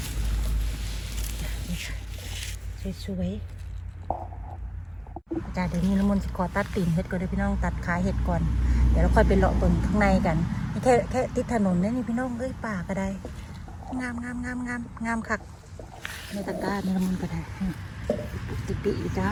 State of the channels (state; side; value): identical; both; correlation 1.00